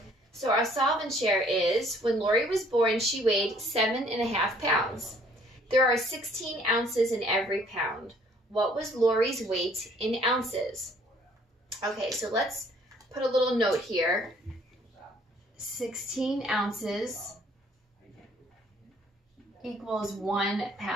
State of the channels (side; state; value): both; normal; correlation 0.60